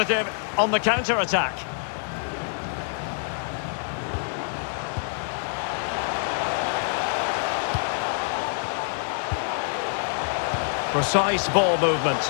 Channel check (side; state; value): right; silent; digital silence